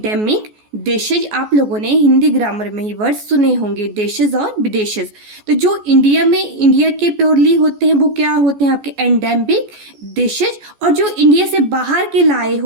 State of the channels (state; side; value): late; left; 14 ms